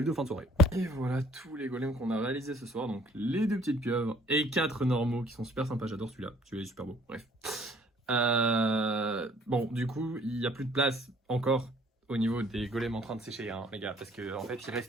de fin de soirée. Et voilà tous les golems qu'on a réalisés ce soir. Donc les 2 petites pieuvres et 4 normaux qui sont super sympas. J'adore celui-là. Celui-là est super beau. Bref. Bon, du coup, il n'y a plus de place encore au niveau des golems en train de sécher, hein, les gars. Parce qu'en fait, il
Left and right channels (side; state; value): both; normal; correlation 0.58